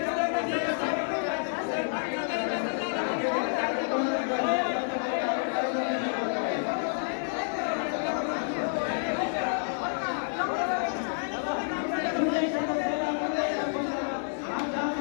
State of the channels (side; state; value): right; silent; digital silence